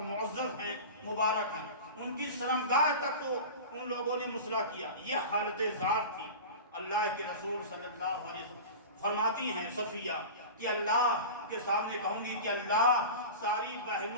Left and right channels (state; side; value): inverted; both; correlation -0.31